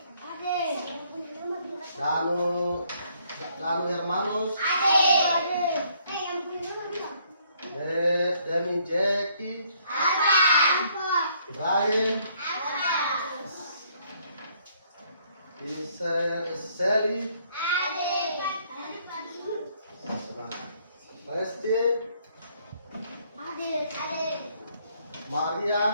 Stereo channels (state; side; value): inverted; both; correlation -0.67